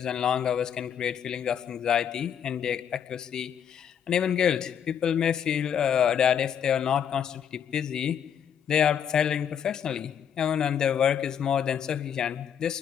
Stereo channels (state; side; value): quieter; right; 8.4 dB